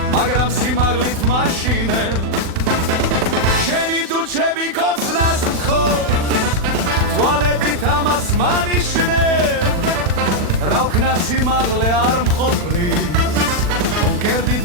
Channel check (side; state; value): left; late; 40 ms